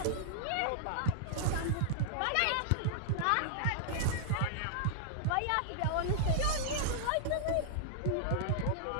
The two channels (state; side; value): different; both; correlation -0.01